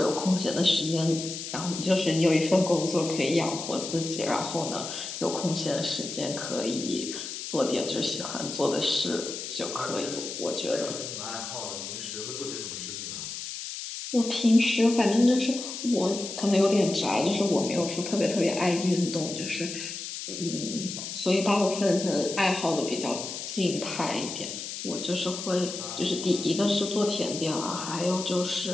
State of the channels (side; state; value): left; noise; hiss, 7 dB below the sound